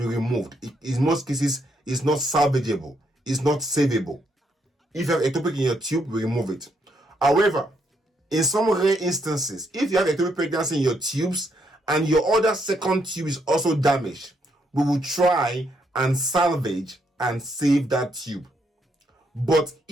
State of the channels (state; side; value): normal; both; correlation 0.75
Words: removed. In most cases, it's not salvageable. It's not savable. If you have ectopic in your tube, we remove it. However, in some rare instances, if you have ectopic pregnancy in your tubes and your other second tube is also damaged, we will try and salvage and save that tube. But